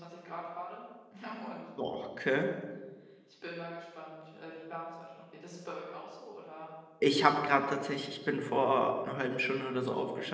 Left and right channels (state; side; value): identical; both; correlation 1.00